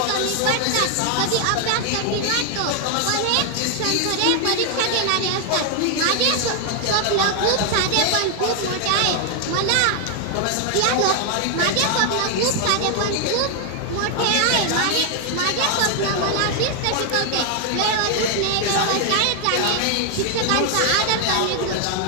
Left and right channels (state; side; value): different; both; correlation 0.00